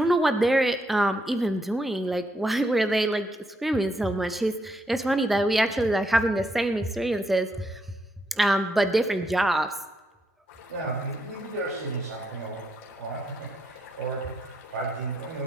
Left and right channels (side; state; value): both; normal; correlation 0.78